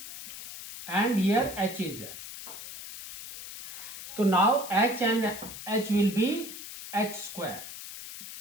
and here h is there. So now h and h will be h square.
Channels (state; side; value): noise; left; hiss, 11 dB below the sound